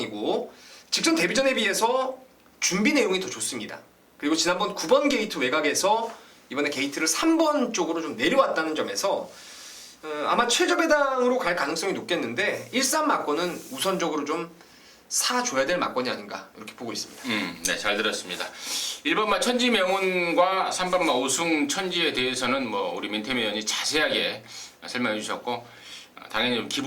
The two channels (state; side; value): identical; both; correlation 1.00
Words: 직전 데뷔전에 비해서 준비 내용이 더 좋습니다. 그리고 지난번 9번 게이트 외곽에서 이번에 게이트를 3번 쪽으로 좀 내려왔다는 점에서 아마 최저 배당으로 갈 가능성이 높겠는데 1-3 막권은 우선적으로 좀 사줘야 될 막권이 아닌가 이렇게 보고 있습니다. 네, 잘 들었습니다. 1번마 천지명운과 3번마 오승천지에 대해서는 뭐 우리 민태민 의원이 자세하게 설명해 주셨고 당연히 좀